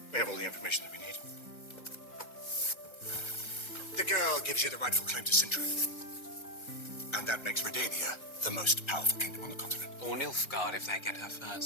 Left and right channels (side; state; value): right; late; 1.3 ms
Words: We have all the information that we need. The girl gives you the rightful claim to Sintra. And that makes Redania the most powerful kingdom on the continent. Or Nilfgaard if they get her